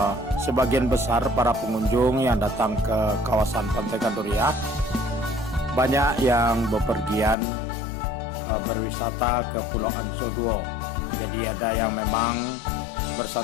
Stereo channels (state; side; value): drops out; right; at 7.4 s